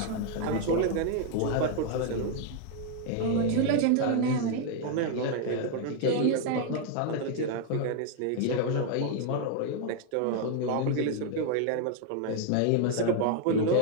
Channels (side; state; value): both; different; correlation 0.00